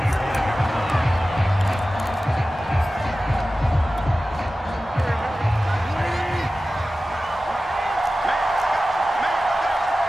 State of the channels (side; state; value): both; normal; correlation 0.95